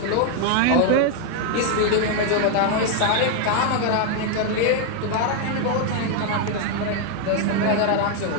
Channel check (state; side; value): different; both; correlation 0.00